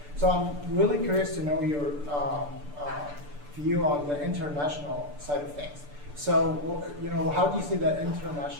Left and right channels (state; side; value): late; left; 6.8 ms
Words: So I'm really curious to know your view on the international side of things. So, how do you see the